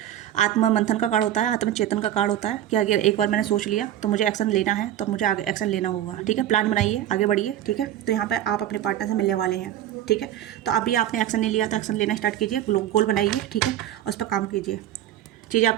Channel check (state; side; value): quieter; left; 12.0 dB